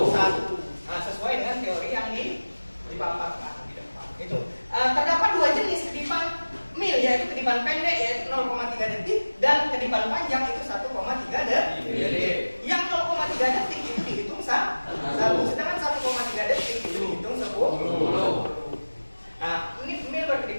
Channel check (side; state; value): both; inverted; correlation -1.00